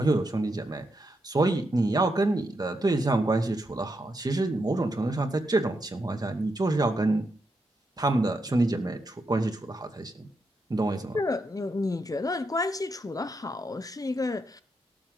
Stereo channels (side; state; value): both; normal; correlation 0.83